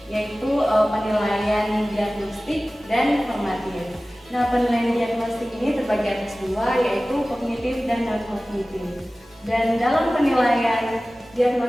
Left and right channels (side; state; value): both; normal; correlation 0.97